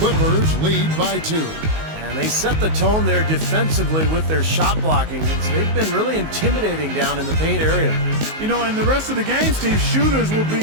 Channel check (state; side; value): late; left; 19 ms